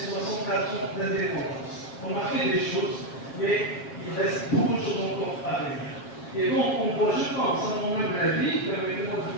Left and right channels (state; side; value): late; right; 7.5 ms